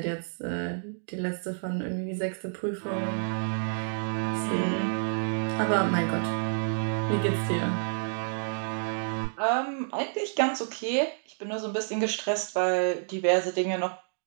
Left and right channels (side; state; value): left; silent; digital silence